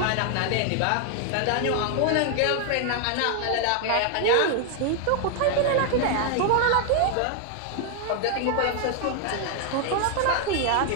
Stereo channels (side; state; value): both; different; correlation 0.00